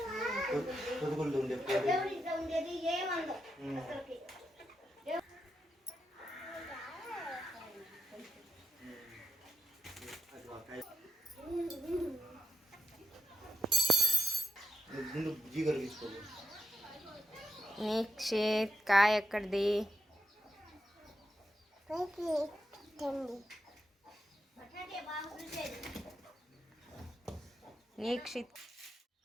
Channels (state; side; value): normal; both; correlation 0.81